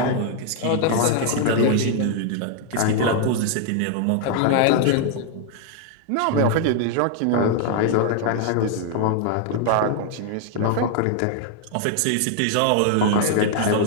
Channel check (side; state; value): both; different; correlation 0.00